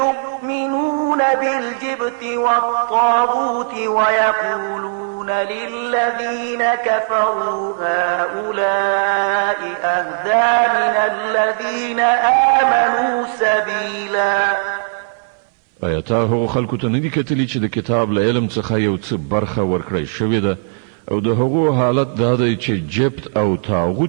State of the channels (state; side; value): silent; left; 60 dB below the other